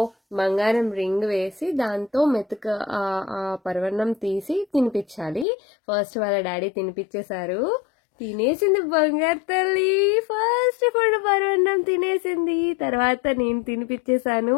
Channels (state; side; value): drops out; right; at 5.5 s